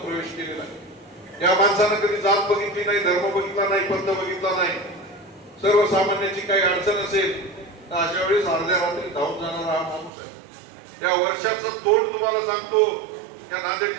केलेला आहे. या माणसानं कधी जात बघितली नाही, धर्म बघितला नाही, पंथ बघितला नाही. सर्वसामान्याची काही अडचण असेल तर अशा वेळेस अर्ध्या रात्री धावून जाणारा हा माणूस आहे. या वर्षाचं तोंड तुम्हाला सांगतो, या नांदेड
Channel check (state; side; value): drops out; left; at 10.1 s